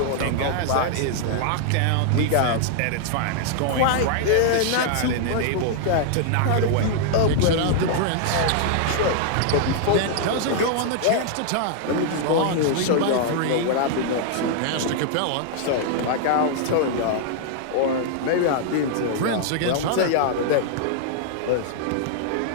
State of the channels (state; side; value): different; both; correlation -0.01